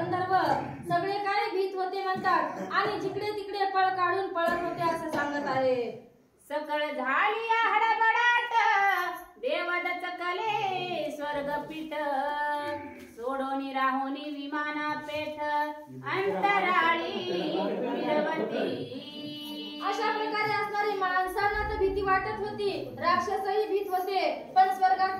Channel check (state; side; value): identical; both; correlation 1.00